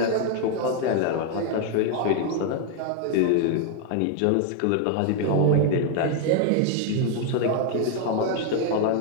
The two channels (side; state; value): both; different; correlation 0.00